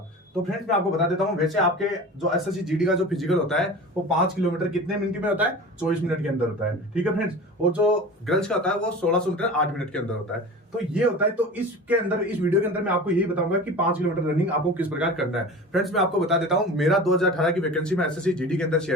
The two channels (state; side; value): normal; both; correlation 0.35